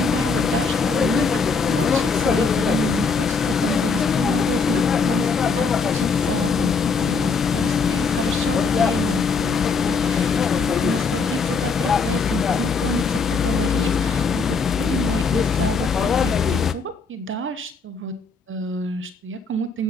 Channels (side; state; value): right; quieter; 4.8 dB